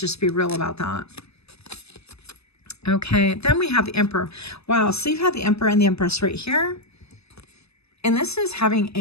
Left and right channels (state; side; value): late; right; 0.79 ms